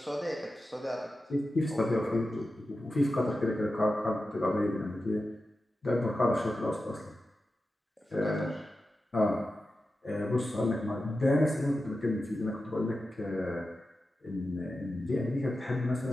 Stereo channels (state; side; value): normal; both; correlation 0.92